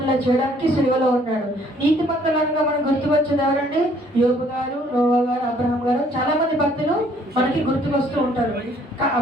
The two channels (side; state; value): both; normal; correlation 0.61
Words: చేయడానికి సిలువలో ఉన్నాడు. నీతిమంతులుగా మనం గుర్తుకొచ్చేది ఎవరండి? యోబు గారు, నోవా గారు, అబ్రహాం గారు, చాలా మంది భక్తులు మనకి గుర్తుకొస్తూ ఉంటారు.